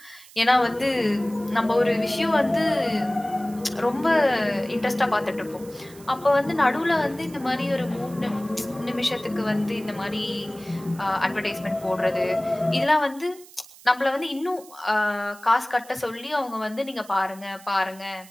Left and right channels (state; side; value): noise; right; hiss, 21 dB below the sound